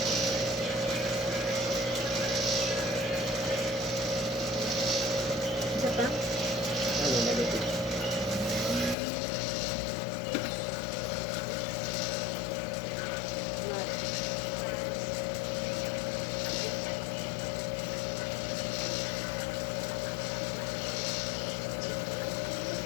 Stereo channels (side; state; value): right; drops out; at 9.0 s